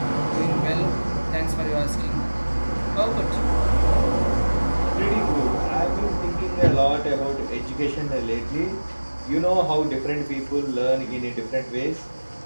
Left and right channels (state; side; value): inverted; both; correlation -1.00